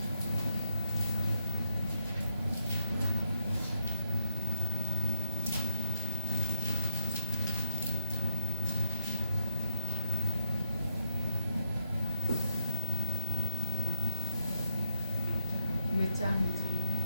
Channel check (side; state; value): both; inverted; correlation -0.88